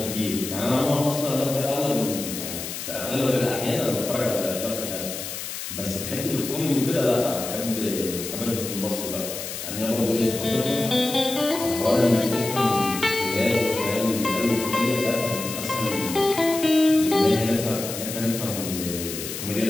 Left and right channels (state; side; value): noise; left; hiss, 7 dB below the sound